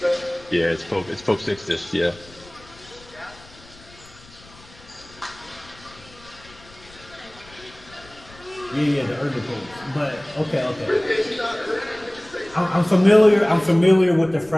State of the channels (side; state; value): left; noise; rumble, 23 dB below the sound